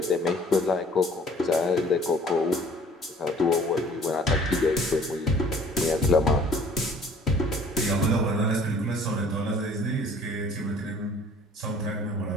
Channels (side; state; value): both; normal; correlation 0.53